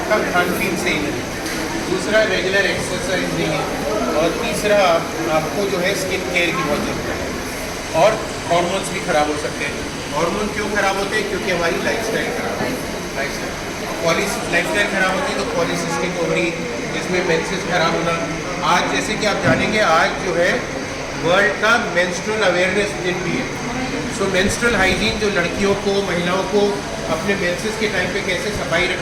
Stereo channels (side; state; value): both; identical; correlation 1.00